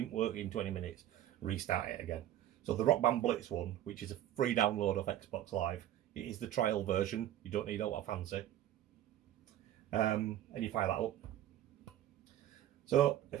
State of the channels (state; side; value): quieter; left; 12.3 dB